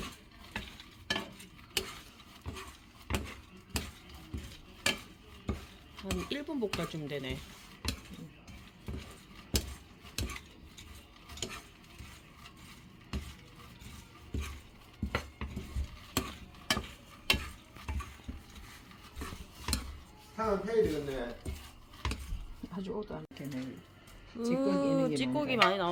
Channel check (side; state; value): both; identical; correlation 1.00